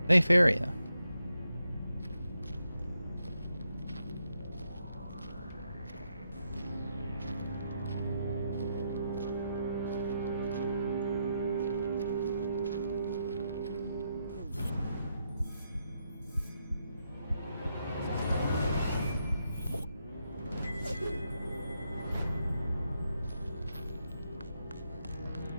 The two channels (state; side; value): inverted; both; correlation -0.81